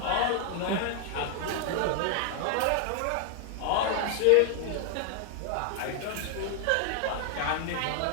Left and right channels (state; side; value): different; both; correlation 0.00